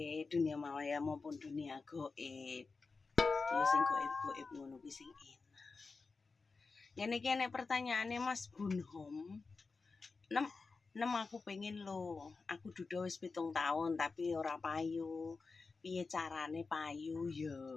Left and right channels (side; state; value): right; quieter; 4.3 dB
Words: dunia maya maupun dunia goib? Ya sing goib-goib ngono kuwi sing enak. Ngene pertanyaane Mas Bunhom. Nem aku pengen lo. Aku duda wis 7 tahun tapi ora payu. Piye carane payu ya?